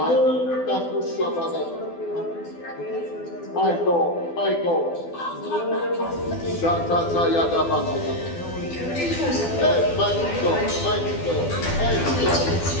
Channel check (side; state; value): right; late; 12 ms